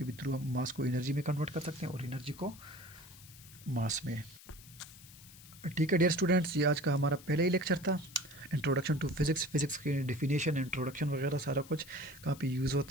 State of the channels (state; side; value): noise; left; hiss, 19 dB below the sound